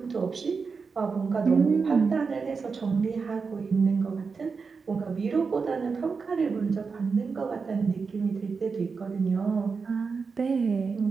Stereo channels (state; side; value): quieter; left; 5.0 dB